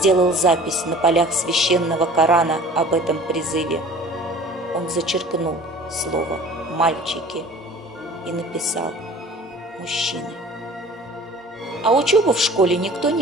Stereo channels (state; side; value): normal; both; correlation 0.46